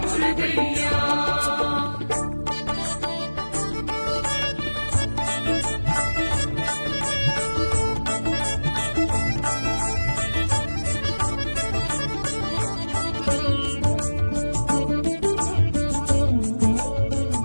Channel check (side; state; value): both; inverted; correlation -1.00